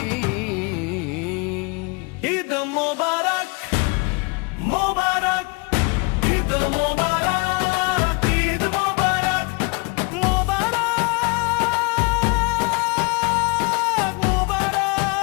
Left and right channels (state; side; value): quieter; right; 29.9 dB